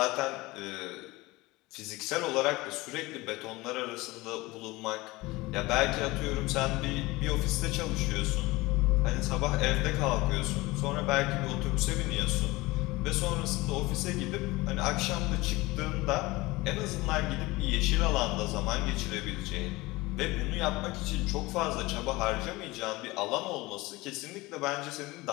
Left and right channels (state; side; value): quieter; right; 21.1 dB